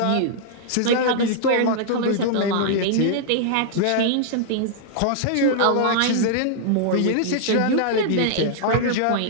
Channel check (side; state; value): both; different; correlation -0.01